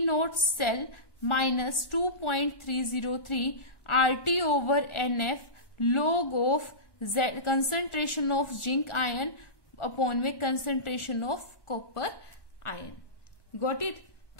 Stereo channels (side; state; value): right; late; 1.4 ms